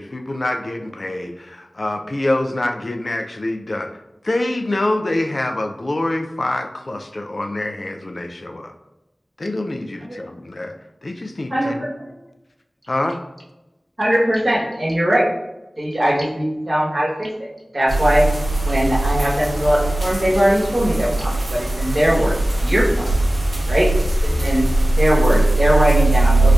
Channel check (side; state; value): both; normal; correlation 0.95